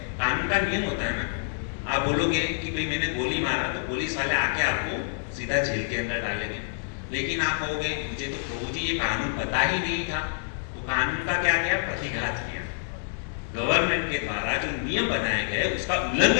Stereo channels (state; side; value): silent; right; digital silence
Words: कानून का नियम होता है ना, आप बोलोगे कि भाई मैंने गोली मारा, तो पुलिस वाले आके आपको सीधा जेल के अंदर डालेंगे। लेकिन आप कहोगे मुझे तो प्रभु जी ये कानून पता ही नहीं था, तो कानून का क्या किया, प्रतिघात किया। गवर्नमेंट के द्वारा जो नियम बनाए गए उसका